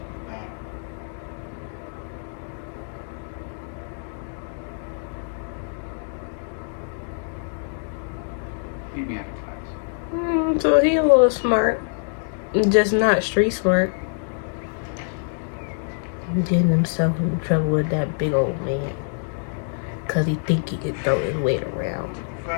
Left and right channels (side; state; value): right; silent; digital silence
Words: Keep me out of class. So he a little smart. Just not street smart. Getting himself in trouble with that big old man. Cause he think he could throw his weight around.